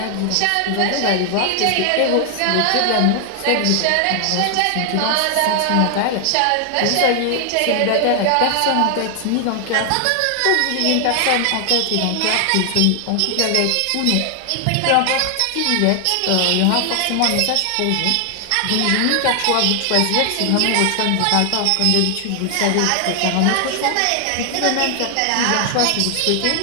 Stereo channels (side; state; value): both; different; correlation 0.00